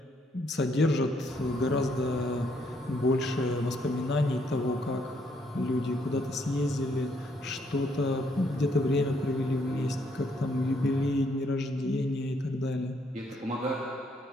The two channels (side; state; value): both; normal; correlation 0.71